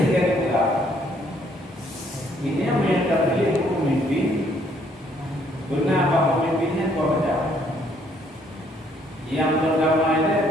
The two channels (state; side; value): normal; both; correlation 0.66